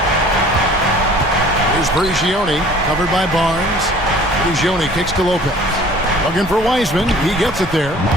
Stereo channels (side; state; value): both; normal; correlation 0.50